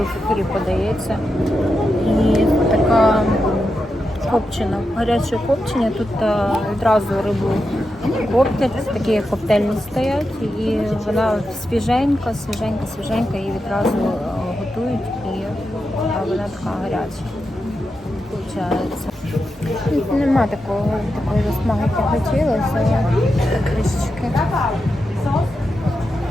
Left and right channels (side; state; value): both; normal; correlation 0.88